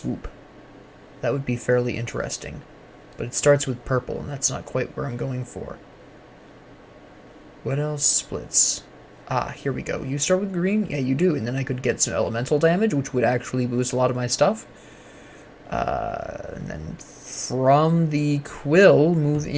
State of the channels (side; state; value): both; identical; correlation 1.00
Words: That would be fairly interesting. But it starts with purple, and that's not quite where I'm going for. What else splits? Ah, here we go. You start with green? Yeah, you do. And then I could get some elemental damage, which would actually boost a lot of my stuff. And then from the quill, move